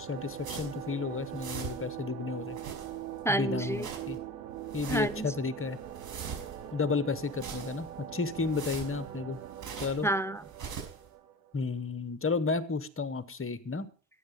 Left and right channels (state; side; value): normal; both; correlation 0.34